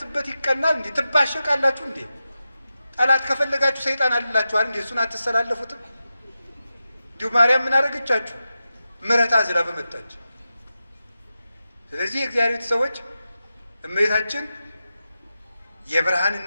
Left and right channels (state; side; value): inverted; both; correlation -0.91